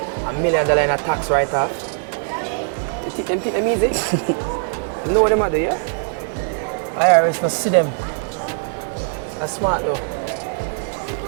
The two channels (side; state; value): left; silent; 65 dB below the other